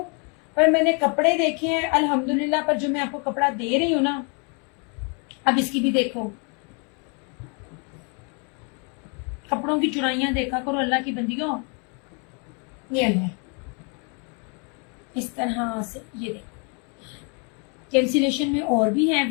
पर मैंने कपड़े देखे हैं अल्हम्दुलिल्लाह। पर जो मैं आपको कपड़ा दे रही हूँ ना, अब इसकी भी देखो, कपड़ों की चुराइयां देखा करो अल्लाह की बंदियों। ये ले, इस तरह से ये देखो, कैंसिलेशन में और भी है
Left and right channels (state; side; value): quieter; right; 36.2 dB